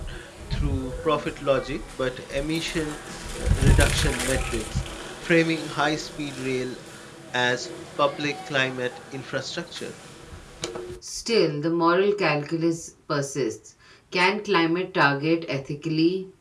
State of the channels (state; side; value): identical; both; correlation 1.00